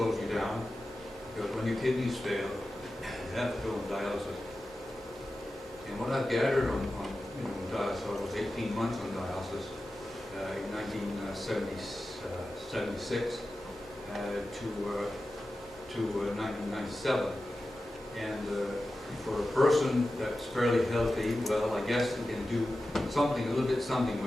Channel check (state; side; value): normal; both; correlation 0.93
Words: you down, because when your kidneys fail, you have to go on dialysis. And what I've gathered on dialysis, I was 18 months on dialysis in 1976 to 1997. And for a person that's fairly healthy, well, I guess you can do something, a little bit something